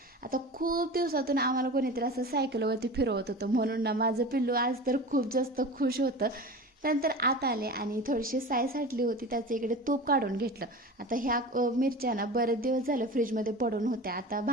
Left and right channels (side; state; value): both; normal; correlation 0.33